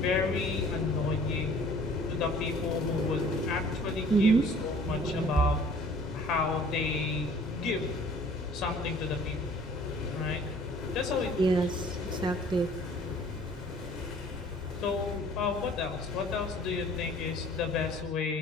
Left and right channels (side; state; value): both; normal; correlation 0.52